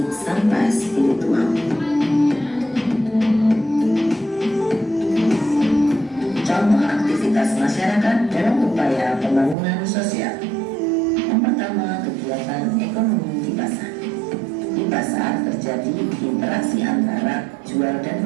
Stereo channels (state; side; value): drops out; left; at 9.6 s